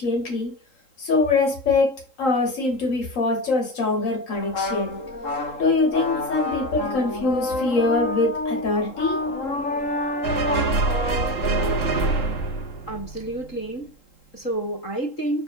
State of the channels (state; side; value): late; right; 3.8 ms